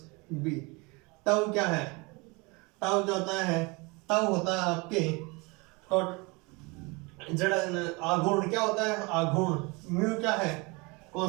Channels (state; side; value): quieter; left; 27.2 dB